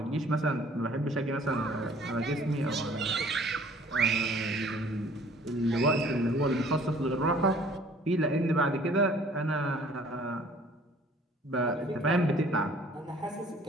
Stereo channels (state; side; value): normal; both; correlation 0.54